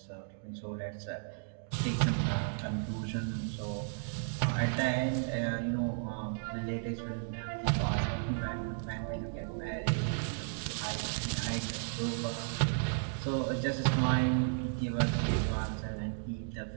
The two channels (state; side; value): silent; left; digital silence